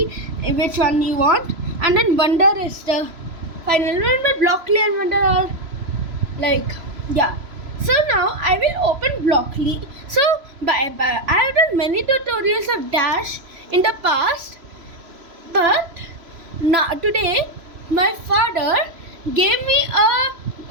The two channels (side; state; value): left; late; 3.0 ms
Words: which one you want, and then Wonder is the final one. But Blockly and Wonder are yeah. So now I will open Blockly. So I have done many tutorials of Dash in the past, but now today my father gave me